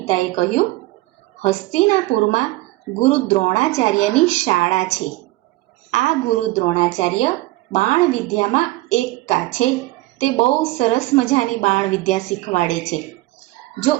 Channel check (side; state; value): left; quieter; 18.7 dB